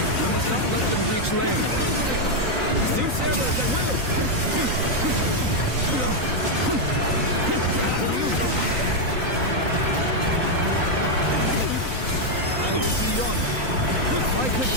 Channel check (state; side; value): late; left; 3.9 ms